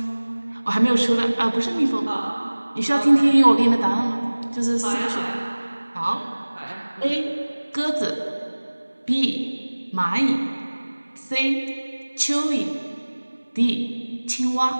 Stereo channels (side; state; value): both; inverted; correlation -1.00